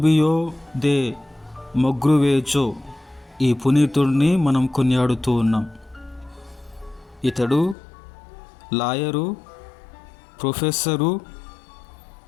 దే మొగ్రువేజో ఈ పునీతుడిని మనం కొనియాడుతూ ఉన్నాం. ఇతడు లాయరు, ప్రొఫెసరు,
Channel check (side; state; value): right; drops out; at 7.8 s